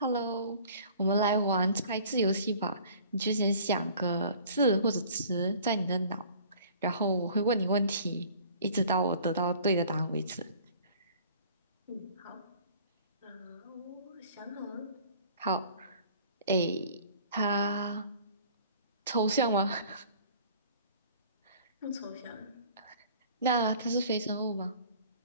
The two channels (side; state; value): both; inverted; correlation -0.50